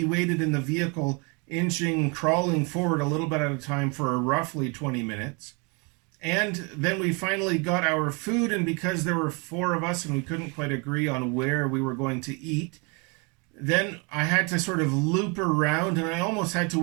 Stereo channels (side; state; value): left; quieter; 30.8 dB